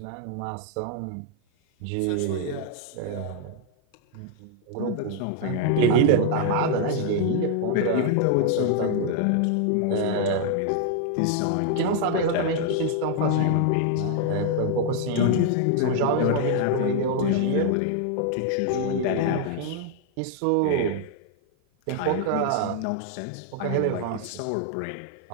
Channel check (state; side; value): different; both; correlation 0.00